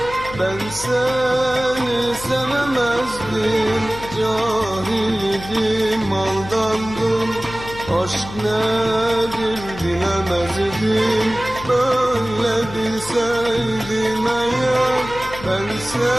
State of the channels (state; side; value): noise; left; hum, 13 dB below the sound